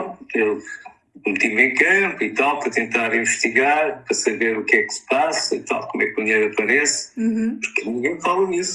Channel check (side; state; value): both; identical; correlation 1.00